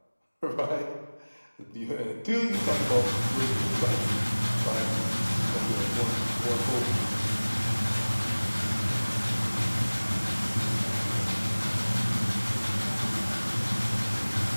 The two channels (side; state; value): both; inverted; correlation -1.00